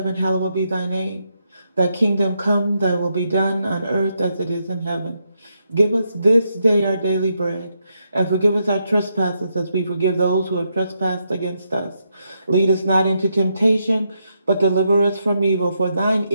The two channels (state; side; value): inverted; both; correlation -0.81